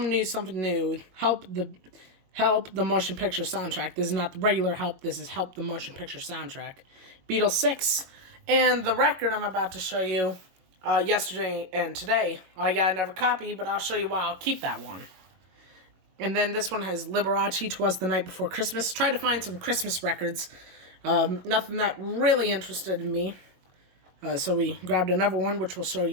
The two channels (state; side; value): late; left; 21 ms